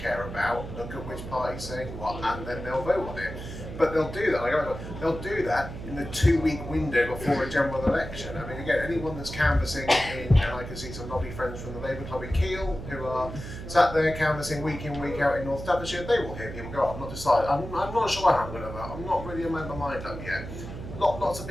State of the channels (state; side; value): noise; right; hum, 10 dB below the sound